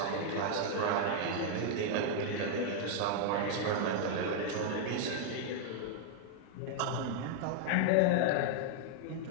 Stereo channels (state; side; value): different; both; correlation 0.00